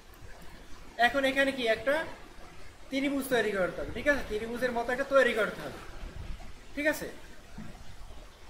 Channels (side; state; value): both; identical; correlation 1.00